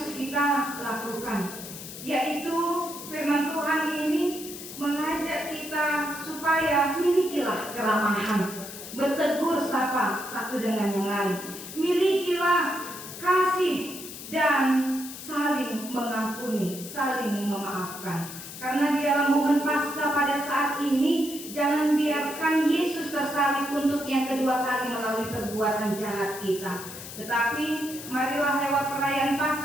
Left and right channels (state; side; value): noise; left; hiss, 12 dB below the sound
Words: kita lakukan, yaitu firman Tuhan ini mengajak kita supaya milikilah keramahan, bertegur sapa satu dengan yang lain, milikilah kasih dan saling mengampuni, saling memaafkan. Karena di dalam momen Paskah pada saat ini, jangan biarkan Yesus tersalib untuk yang kedua kali melalui perbuatan jahat kita. Tetapi marilah lewat perayaan